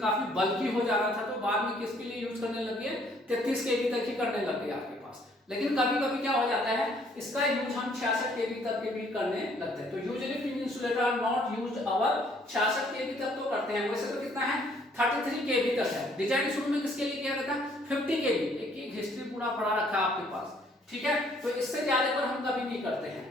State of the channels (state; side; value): normal; both; correlation 0.63